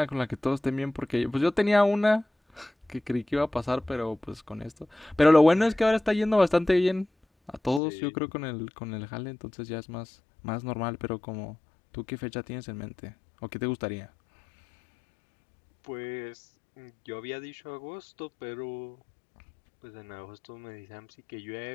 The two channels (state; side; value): drops out; right; at 7.8 s